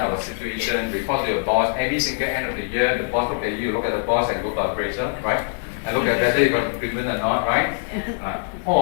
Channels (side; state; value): right; silent; digital silence